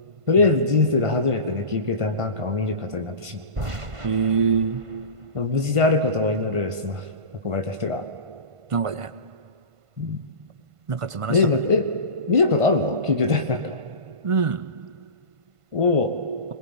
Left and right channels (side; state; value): left; late; 1.5 ms